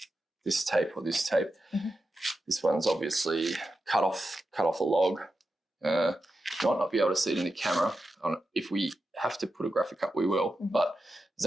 this tape or this tape. This one's obviously cut off a log. You might not be able to see it in the camera. If we have to put a graphic up, we will. But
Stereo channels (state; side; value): normal; both; correlation 0.90